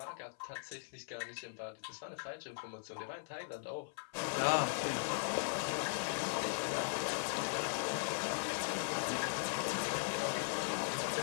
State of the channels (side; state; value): right; silent; 52 dB below the other